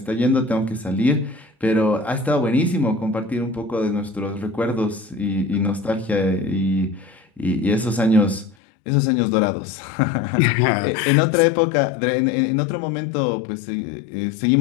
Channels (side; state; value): right; drops out; at 8.6 s